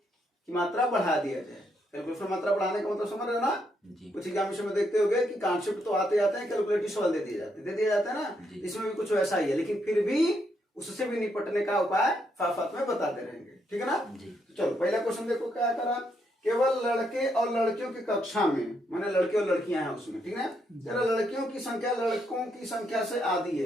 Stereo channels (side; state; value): both; normal; correlation 0.77